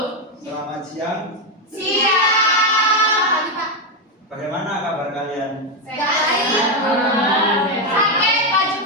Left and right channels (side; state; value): both; normal; correlation 0.06